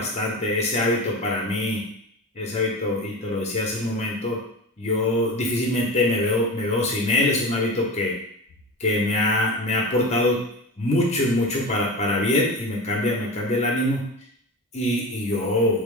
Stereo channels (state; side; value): normal; both; correlation 0.27